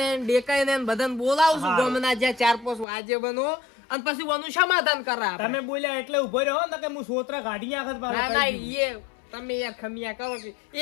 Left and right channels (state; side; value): drops out; right; at 2.9 s